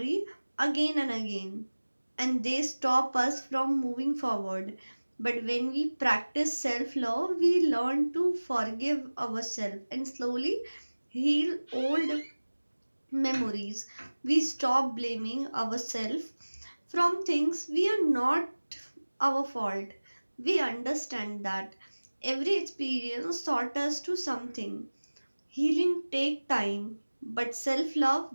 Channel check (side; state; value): both; inverted; correlation -1.00